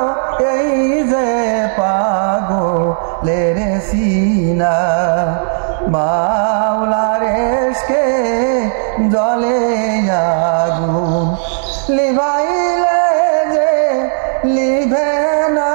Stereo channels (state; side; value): silent; left; digital silence